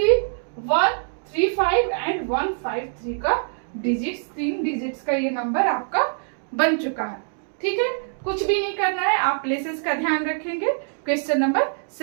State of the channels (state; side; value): silent; left; digital silence